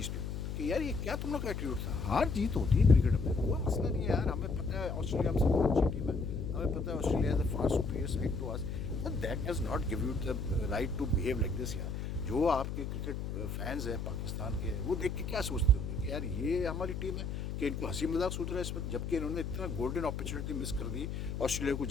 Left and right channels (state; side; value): noise; left; hum, 4 dB below the sound